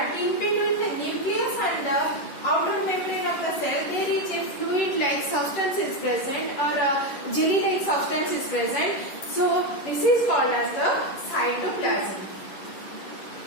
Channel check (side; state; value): right; late; 11 ms